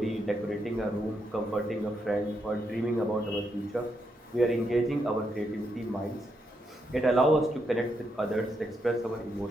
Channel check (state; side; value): normal; both; correlation 0.80